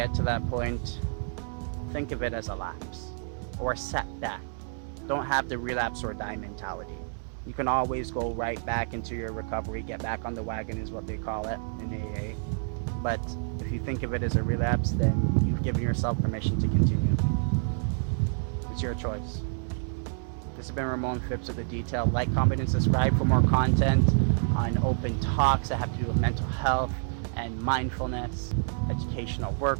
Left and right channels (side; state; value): left; silent; digital silence